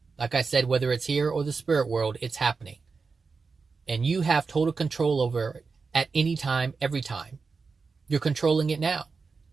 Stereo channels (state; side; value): quieter; left; 4.7 dB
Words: Like I said, whether it's here or the spirit world, it's happening. And you have total control over it at any time, every time. You're controlling it now.